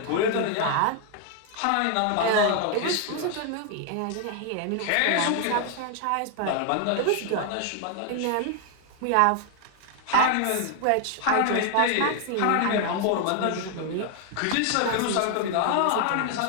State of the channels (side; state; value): both; different; correlation 0.00